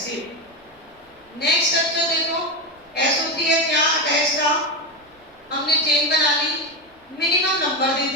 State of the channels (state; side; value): normal; both; correlation 0.14